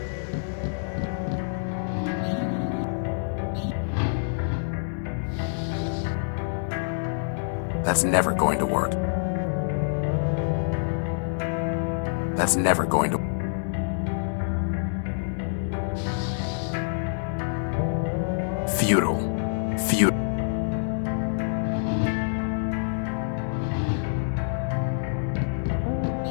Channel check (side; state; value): right; silent; digital silence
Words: That's never going to work. That's never going to... Futile. Futile.